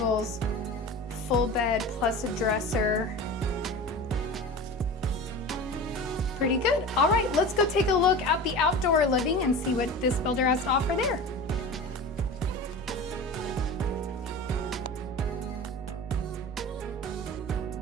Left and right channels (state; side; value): normal; both; correlation 0.33